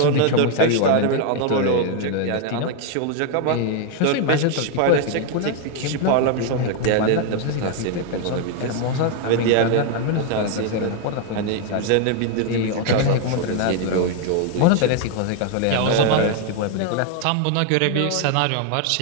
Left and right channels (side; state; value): both; different; correlation 0.01